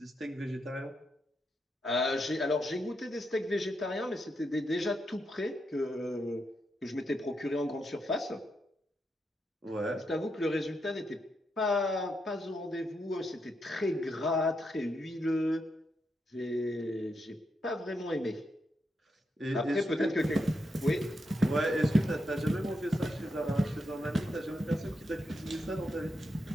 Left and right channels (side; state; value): both; normal; correlation 0.83